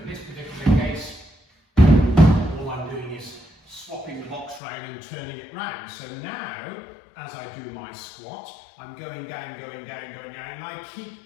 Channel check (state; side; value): drops out; right; at 4.6 s